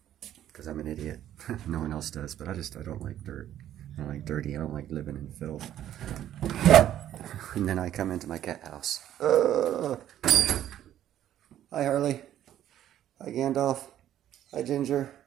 because I'm an idiot. No one else does, but I don't like dirt. I don't like dirty. I don't like living in filth. And then I come into my cat house. Hi, Harley. Hi, Gandalf. Hi, Ginger.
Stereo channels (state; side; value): quieter; left; 11.6 dB